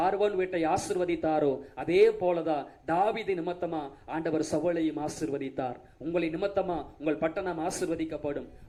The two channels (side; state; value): both; identical; correlation 1.00